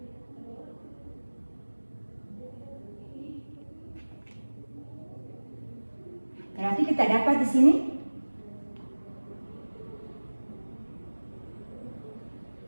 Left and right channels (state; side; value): inverted; both; correlation -1.00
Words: berarti kita dapat di sini